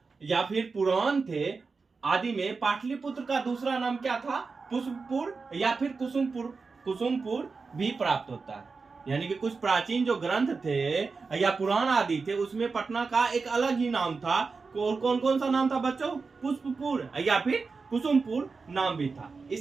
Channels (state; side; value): quieter; left; 4.5 dB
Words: या फिर पुराण थे, आदि में पाटलिपुत्र का दूसरा नाम क्या था, पुष्पपुर या फिर कुसुमपुर। कुसुमपुर भी प्राप्त होता है। यानी कि कुछ प्राचीन जो ग्रंथ थे या पुराण आदि थे, उसमें पटना का एक अलग ही नाम था। और कौन कौन सा नाम था बच्चों? पुष्पपुर या फिर कुसुमपुर नाम भी था।